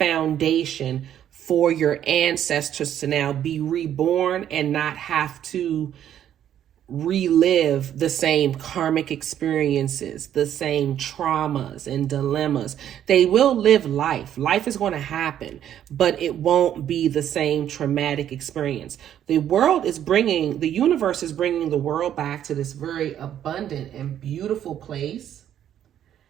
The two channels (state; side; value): quieter; left; 10.5 dB